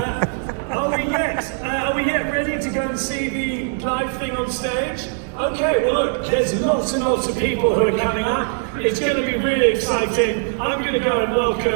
Are we yet ready to go and see the live thing on stage? Okay, well look, there's lots and lots of people who are coming up. It's going to be really exciting. I'm going to go and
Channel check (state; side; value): silent; left; 60 dB below the other